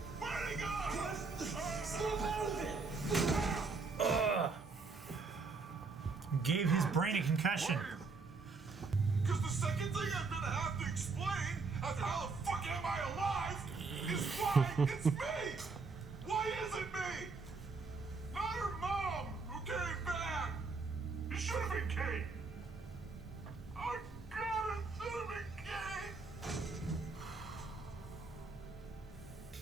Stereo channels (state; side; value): quieter; left; 4.3 dB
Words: Where'd he go? Snap out of it! Gave his brain a concussion. Because the second thing I'm gonna have to explain after how the fuck am I alive is why it's me! Why is it me? Not her mom who came back! It should have been Kate! Oh god, it should have been Kate!